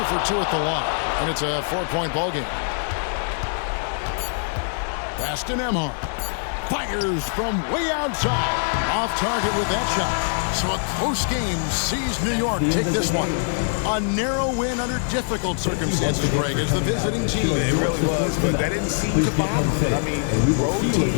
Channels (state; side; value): silent; right; digital silence